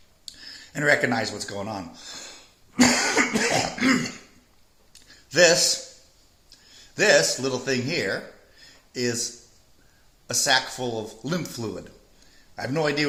and recognize what's going on. This little thing here is a sack full of lymph fluid. I have no idea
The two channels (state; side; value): identical; both; correlation 1.00